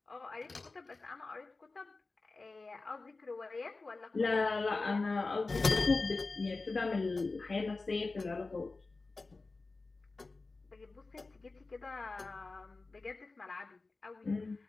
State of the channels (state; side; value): quieter; right; 3.6 dB